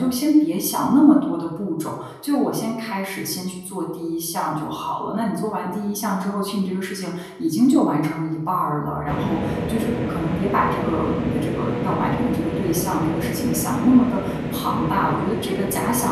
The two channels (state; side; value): identical; both; correlation 1.00